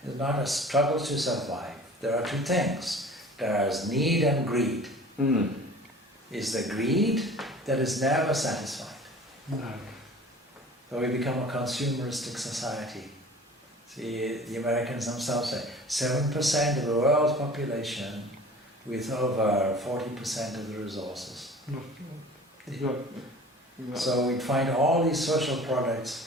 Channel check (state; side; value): normal; both; correlation 0.44